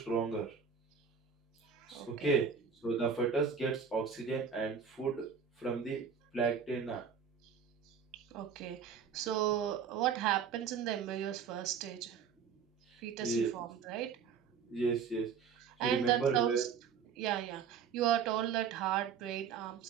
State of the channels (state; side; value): quieter; left; 6.8 dB